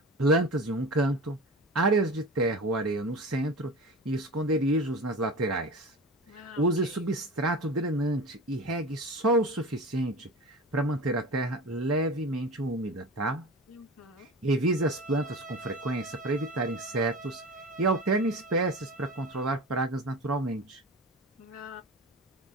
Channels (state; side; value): normal; both; correlation 0.32